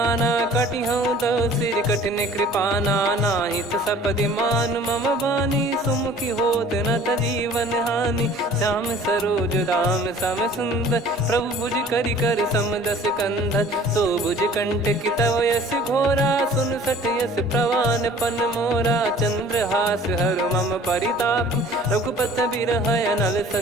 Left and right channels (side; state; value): both; normal; correlation 0.49